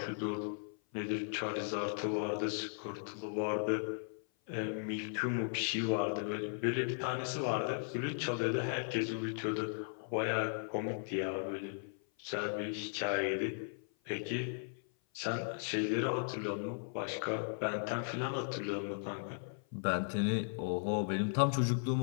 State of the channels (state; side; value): silent; right; 53 dB below the other